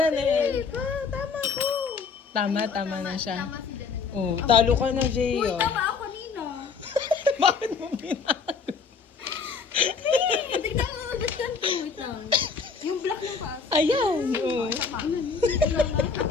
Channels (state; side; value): quieter; right; 5.4 dB